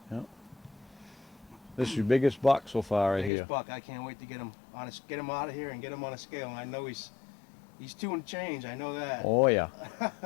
Yeah. This is your biggest buck so far right Biggest here. buck. I can't wait to get him on get him out of here and get him on a scale. And I know he's 2 and change. I know that. Oh yeah.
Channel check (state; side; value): drops out; right; at 3.3 s